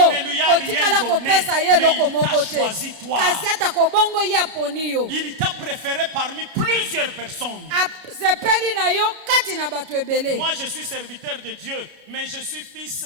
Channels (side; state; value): left; late; 32 ms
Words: Hallelujah. otikala Rien kopesa donné, ye eloko mais il t'a moko te choisi toi. kasi atako bongo ye aponi yo Il t'a préféré parmi plusieurs personnes. asepeli na yo kati na bato ebele. Moi, je suis serviteur de Dieu, mais je suis fils